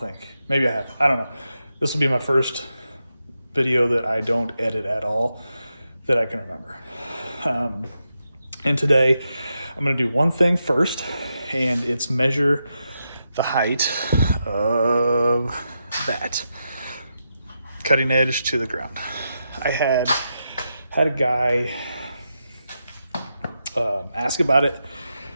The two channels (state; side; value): inverted; both; correlation -0.86